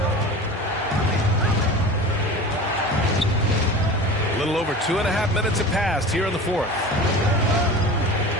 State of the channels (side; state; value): both; normal; correlation 0.35